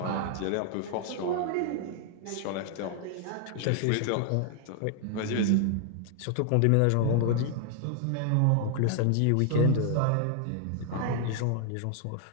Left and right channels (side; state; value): both; different; correlation 0.00